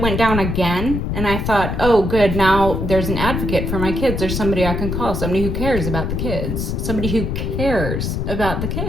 went down again, and I thought, oh, good, now there's an advocate for my kids. There's somebody I can call, somebody who cares about the kids, somebody who cares about the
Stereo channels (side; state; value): left; noise; rumble, 2 dB below the sound